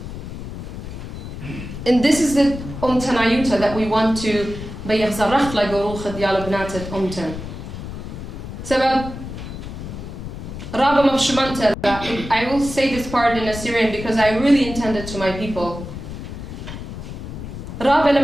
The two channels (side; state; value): left; noise; rumble, 9 dB below the sound